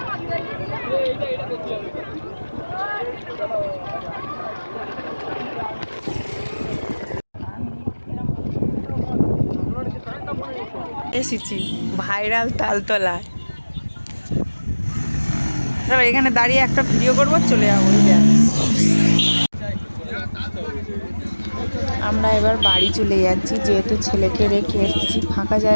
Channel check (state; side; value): inverted; both; correlation -1.00